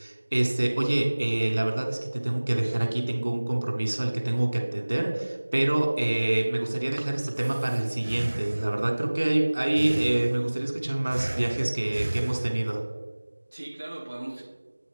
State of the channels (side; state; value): both; inverted; correlation -1.00